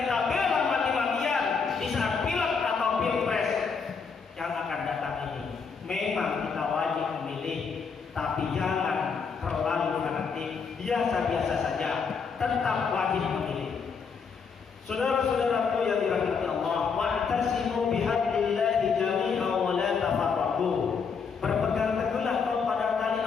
bela mati-matian di saat pilek atau pilpres yang akan datang ini. Memang kita wajib memilih, tapi jangan terlalu fanatik, biasa-biasa saja, tetap wajib memilih. Saudara-saudaraku yang dirahmati Allah, wa'tasimu bihablillahi jami'an wa la tafarraqu. Berpegang teguhlah kau pada tali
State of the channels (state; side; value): quieter; right; 5.6 dB